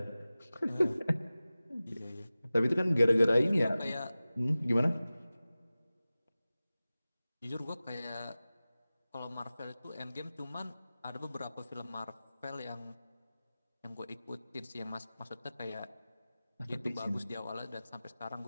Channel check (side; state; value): both; inverted; correlation -0.96